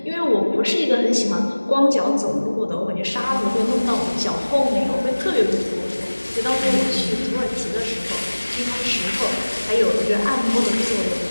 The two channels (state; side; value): inverted; both; correlation -1.00